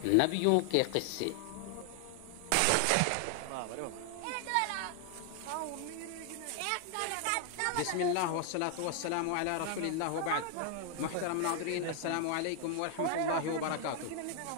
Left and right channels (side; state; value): both; different; correlation 0.00